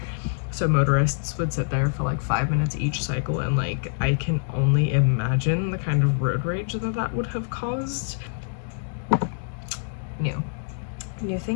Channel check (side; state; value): right; silent; digital silence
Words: So motorists would sit there for like 5 minutes each cycle, and like I can only imagine the kind of road rage that would have caused. New